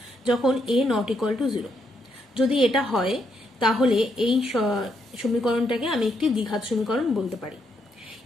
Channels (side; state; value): both; normal; correlation 0.77